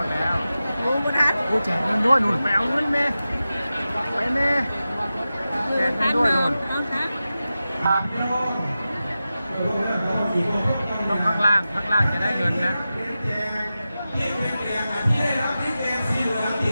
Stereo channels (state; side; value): inverted; both; correlation -0.93